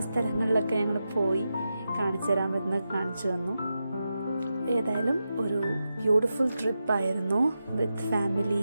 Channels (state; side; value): inverted; both; correlation -0.90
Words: സ്ഥലങ്ങളിലൊക്കെ ഞങ്ങൾ പോയി കാണിച്ചു തരാൻ പറ്റുന്ന കാണിച്ചു തന്നു. ഏതായാലും ഒരു ബ്യൂട്ടിഫുൾ ട്രിപ്പായിരുന്നു with